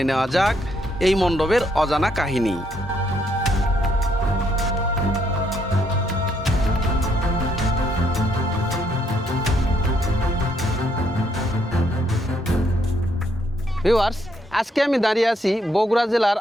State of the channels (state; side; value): normal; both; correlation 0.72